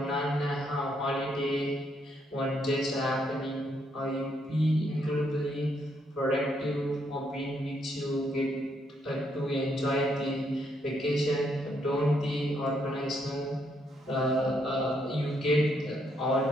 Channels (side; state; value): both; normal; correlation 0.74